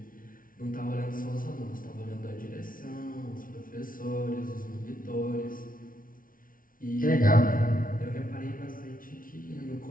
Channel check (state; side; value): late; right; 0.40 ms